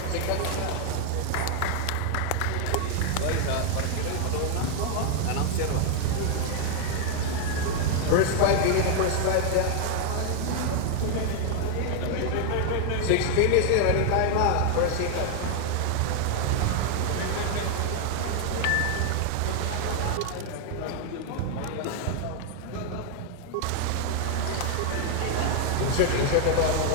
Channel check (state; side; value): different; both; correlation 0.00